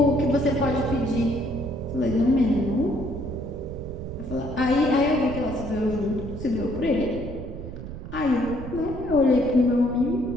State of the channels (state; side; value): noise; right; rumble, 10 dB below the sound